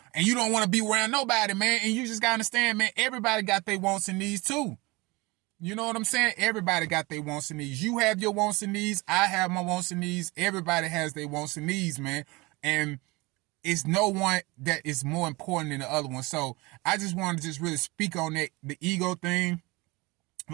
you don't want to be around nobody, man. And you just gotta understand, man, everybody got their wants and needs too. You know what I'm saying? Everybody got their wants and needs. You have your wants and needs. I have my wants and needs. Everybody has their wants and needs, man. And it's no one that is more important than the other one. So I just want to just really speak on that, the ego thing.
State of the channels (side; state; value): left; quieter; 24.0 dB